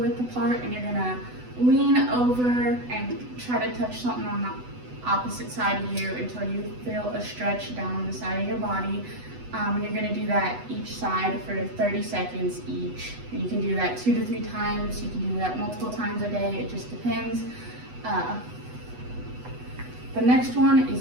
apart, and you're going to lean over and try to touch something on the opposite side of you until you feel a stretch down the side of your body. You're going to do that each side for 30 seconds each. And you can do that 2 to 3 times. You can do that multiple times a day. It just depends. The next one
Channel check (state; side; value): late; left; 8.1 ms